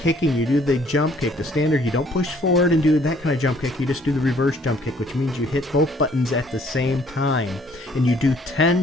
You do the jump kick, the standard. You don't push forward and do that kind of jump kick. You just do the reverse jump kick, which means you hit both buttons at the same time. And you do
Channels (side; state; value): both; normal; correlation 0.61